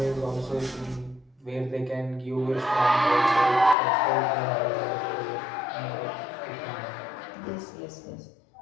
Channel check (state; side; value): drops out; right; at 3.8 s